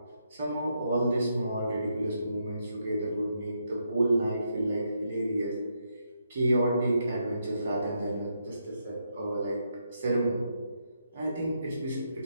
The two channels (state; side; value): inverted; both; correlation -0.79